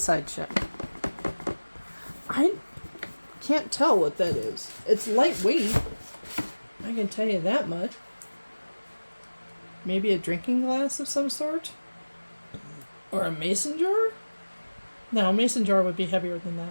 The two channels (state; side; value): inverted; both; correlation -1.00